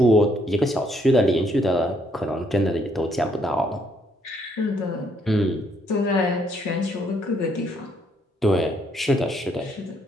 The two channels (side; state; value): both; normal; correlation 0.70